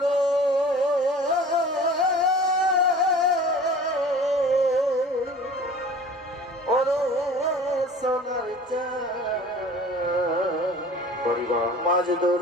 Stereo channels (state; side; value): normal; both; correlation 0.43